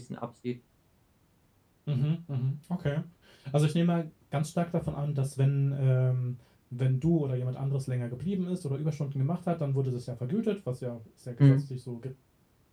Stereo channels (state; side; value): identical; both; correlation 1.00